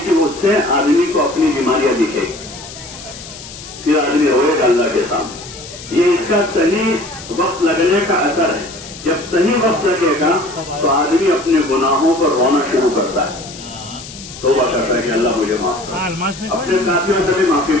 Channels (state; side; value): noise; left; hiss, 14 dB below the sound